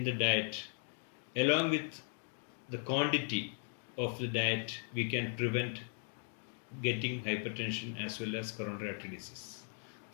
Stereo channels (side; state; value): right; silent; 53 dB below the other